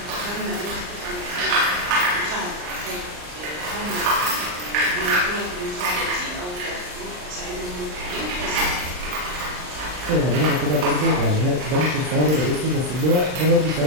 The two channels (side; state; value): left; late; 39 ms